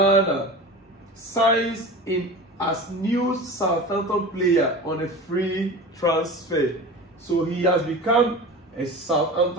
signs in as new Southampton player on a free transfer. So he has become a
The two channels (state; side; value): normal; both; correlation 0.33